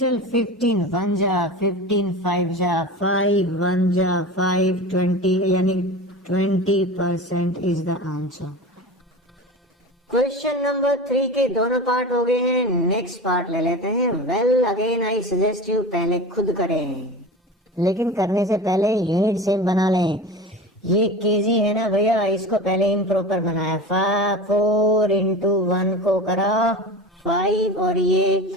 15 1 जा 15 5 जा 5 1 जा 5 20, यानी 20% is the answer. Question number 3 के दोनों पार्ट हो गए हैं, नेक्स्ट पार्ट ले लेते हैं। Well again I suggest you पहले खुद करें, लेकिन करने से पहले यूनिट सेम बना लें। ये केजी है ना भैया, इसको पहले इम्प्रॉपर बनाया। 4 into 1 को करा 5, और ये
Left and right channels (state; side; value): normal; both; correlation 0.31